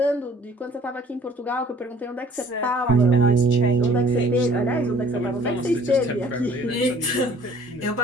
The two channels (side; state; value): both; normal; correlation 0.54